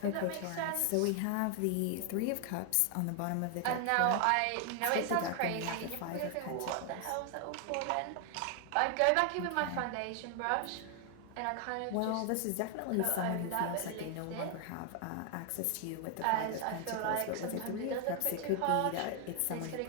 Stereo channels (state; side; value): different; both; correlation 0.00